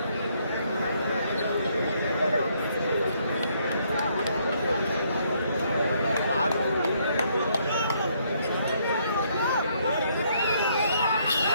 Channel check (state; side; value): inverted; both; correlation -0.70